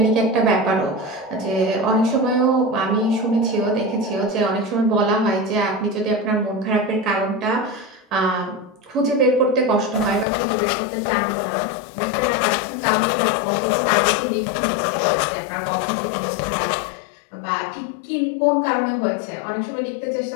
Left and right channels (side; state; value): right; drops out; at 10.2 s